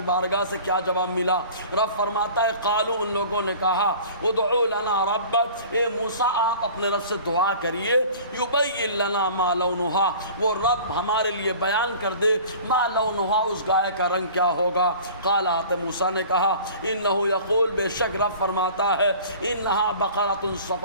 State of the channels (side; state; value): both; inverted; correlation -0.44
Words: بارگاہ سے کیا جواب ملا؟ رب فرماتا ہے قالو، ان لوگوں نے کہا ادعو لنا ربک، اے موسیٰ آپ اپنے رب سے دعا کریے، یبین لنا ما لونہا، وہ رب ہمارے لیے بیان کر دے ما لونہا، اس گائے کا رنگ کیا ہوگا۔ قال، موسیٰ نے کہا انہ یقول، بے شک رب فرماتا ہے انہا بقرۃ